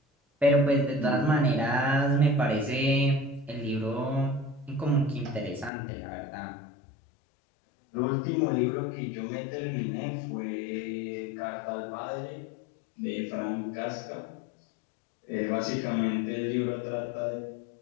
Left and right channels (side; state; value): right; drops out; at 5.7 s